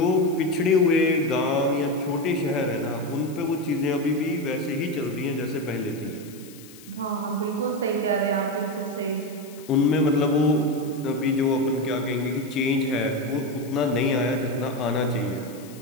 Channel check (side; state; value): left; noise; hiss, 20 dB below the sound